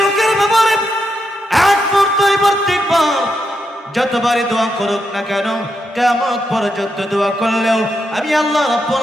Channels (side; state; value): both; normal; correlation 0.83